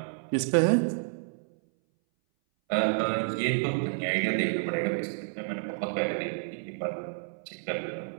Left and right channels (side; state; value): left; silent; 58 dB below the other